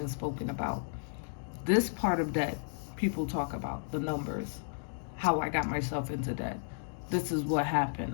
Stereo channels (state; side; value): silent; right; digital silence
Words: spoken about. This part of debt, people talk about the numbers, how I got myself into debt. This is what happened.